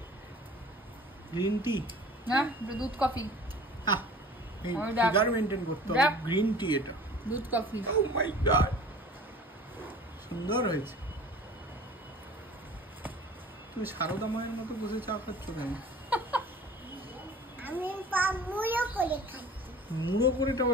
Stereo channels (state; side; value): normal; both; correlation 0.44